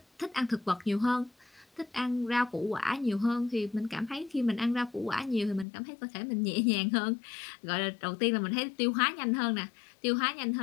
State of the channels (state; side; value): drops out; right; at 5.7 s